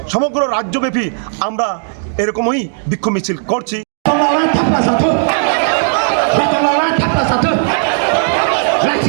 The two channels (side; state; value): left; silent; digital silence